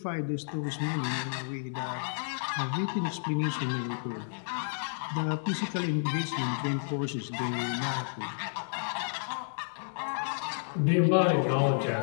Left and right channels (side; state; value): right; silent; digital silence